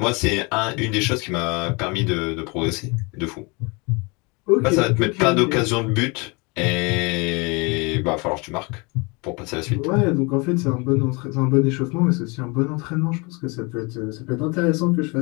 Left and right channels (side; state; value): right; quieter; 28.7 dB